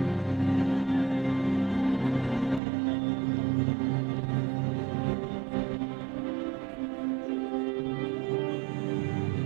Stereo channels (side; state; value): left; drops out; at 2.6 s